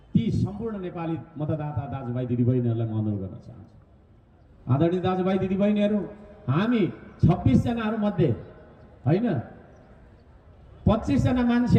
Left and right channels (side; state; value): both; identical; correlation 1.00